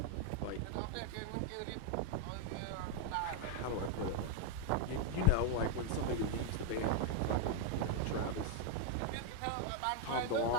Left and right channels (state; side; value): different; both; correlation 0.00